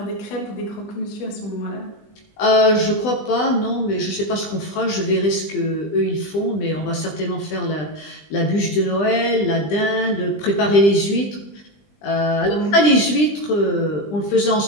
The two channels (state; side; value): late; right; 20 ms